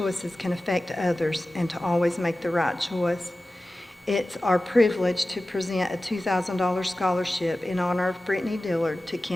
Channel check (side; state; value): both; normal; correlation 0.95